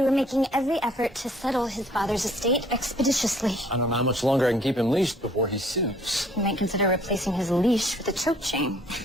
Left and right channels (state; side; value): normal; both; correlation 0.59